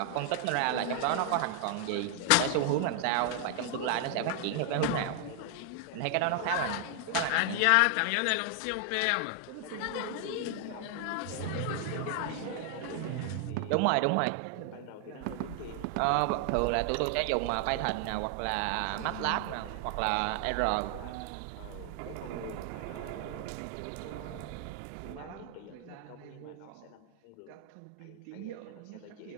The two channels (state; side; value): different; both; correlation 0.00